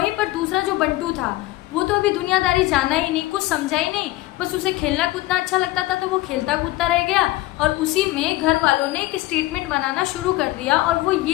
पर दूसरा जो बंटू था वो तो अभी दुनियादारी जाना ही नहीं, कुछ समझा ही नहीं, बस उसे खेलना कूदना अच्छा लगता था तो वो खेलता कूदता रह गया। और उसी में घर वालों ने एक स्टेटमेंट बनाना शुरू कर दिया, और वो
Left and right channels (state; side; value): quieter; right; 17.9 dB